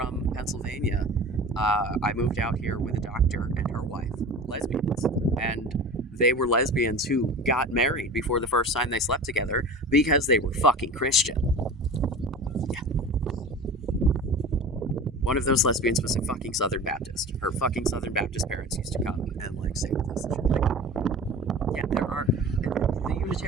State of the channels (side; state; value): both; normal; correlation 0.35